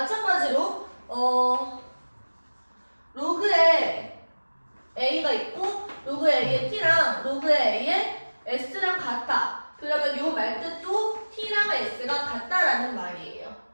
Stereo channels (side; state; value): both; inverted; correlation -1.00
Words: 로그에 A가 있고 로그에 A의 T랑 로그에 A의 S랑 같아. 그러면 요 말뜻도 T랑 S가 같다라는 말이에요.